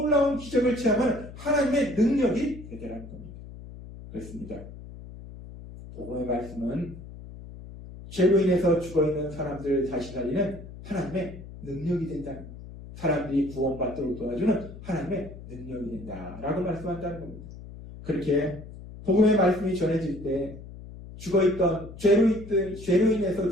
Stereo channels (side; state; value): left; noise; hum, 14 dB below the sound